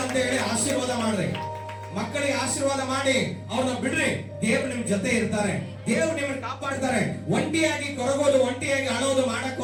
ಅಂತ ಹೇಳಿ ಆಶೀರ್ವಾದ ಮಾಡ್ರಿ. ಮಕ್ಕಳಿಗೆ ಆಶೀರ್ವಾದ ಮಾಡಿ ಅವ್ರನ್ನ ಬಿಡ್ರಿ. ದೇವ್ರು ನಿಮ್ ಜೊತೆ ಇರ್ತಾರೆ, ದೇವ್ರು ನಿಮ್ಮನ್ನ ಕಾಪಾಡ್ತಾರೆ. ಒಂಟಿಯಾಗಿ ಕೊರಗೋದು, ಒಂಟಿಯಾಗಿ ಅಳೋದು ಮಾಡಕ್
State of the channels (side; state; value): both; identical; correlation 1.00